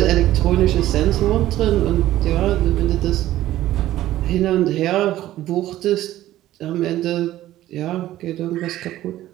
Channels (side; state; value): left; quieter; 14.3 dB